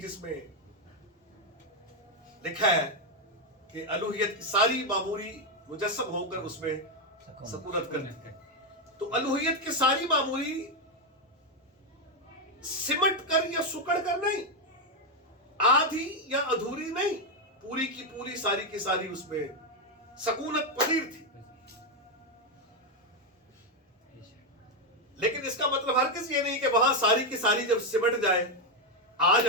جس میں لکھا ہے کہ الوہیت کی ساری معموری مجسم ہو کر اس میں سکونت کرتی ہے. تو الوہیت کی ساری معموری سمٹ کر یا سکڑ کر نہیں، آدھی یا ادھوری نہیں، پوری کی پوری ساری کی ساری اس میں سکونت پذیر تھی. لیکن اس کا مطلب ہرگز یہ نہیں کہ وہاں ساری کی ساری جب سمٹ جائے آ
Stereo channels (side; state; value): both; normal; correlation 0.04